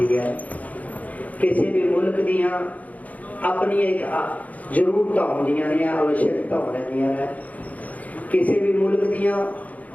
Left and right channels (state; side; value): late; right; 0.074 ms